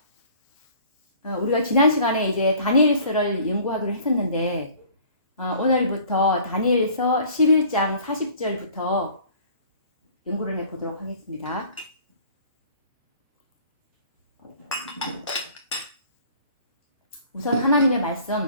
우리가 지난 시간에 이제 다니엘서를 연구하기로 했었는데 오늘부터 다니엘서 11장 40절부터 연구를 해보도록 하겠습니다. 우선 하나님의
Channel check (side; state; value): both; inverted; correlation -0.51